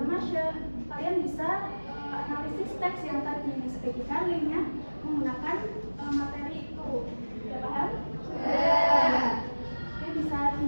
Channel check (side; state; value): both; inverted; correlation -1.00